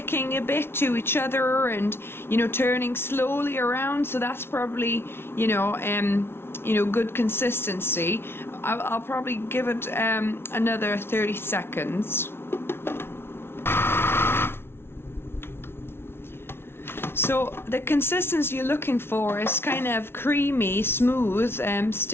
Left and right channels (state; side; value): late; right; 0.12 ms